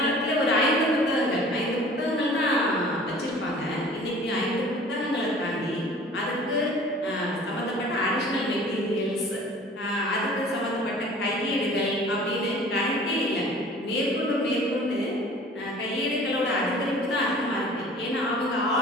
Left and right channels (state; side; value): normal; both; correlation 0.47